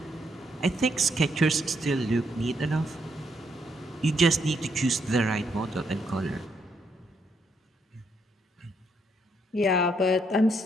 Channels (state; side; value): normal; both; correlation 0.75